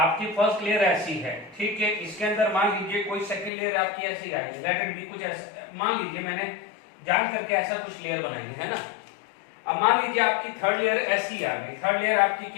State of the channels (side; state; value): right; drops out; at 3.5 s